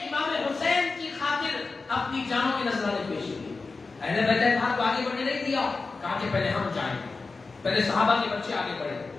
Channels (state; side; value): quieter; right; 4.0 dB